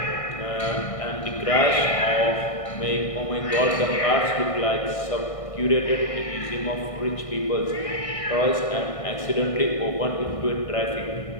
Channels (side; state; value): right; late; 1.6 ms